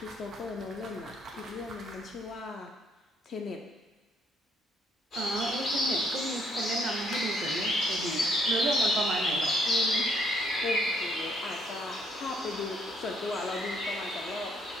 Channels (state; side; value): normal; both; correlation 0.69